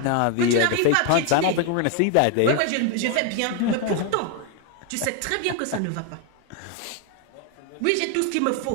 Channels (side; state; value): both; different; correlation 0.01